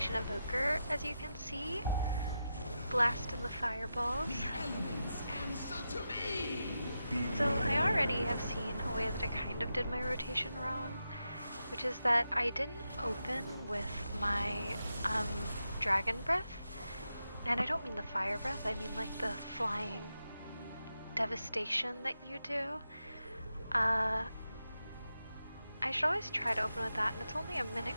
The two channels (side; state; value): both; inverted; correlation -0.88